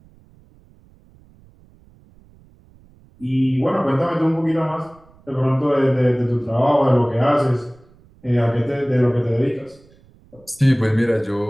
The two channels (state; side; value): noise; right; rumble, 28 dB below the sound